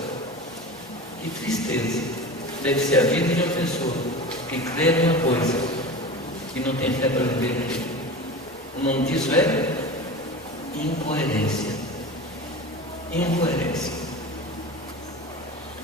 que tristeza deve ser a vida de uma pessoa que crê numa coisa e não tem fé para viver aquilo. O nome disso é incoerência. Incoerência.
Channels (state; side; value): normal; both; correlation 0.31